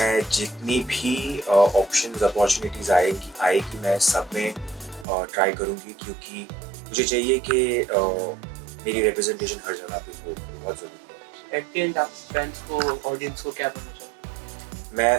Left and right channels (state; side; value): drops out; left; at 5.1 s